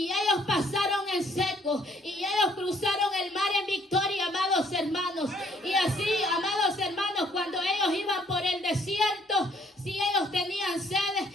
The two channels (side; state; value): both; normal; correlation 0.64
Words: Jericó. Y ellos cruzaron el mar en victoria, amados hermanos. Y así, amados hermanos, cuando ellos iban por el desierto, si ellos tenían sed,